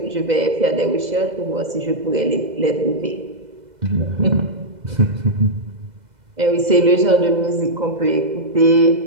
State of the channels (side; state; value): left; late; 2.0 ms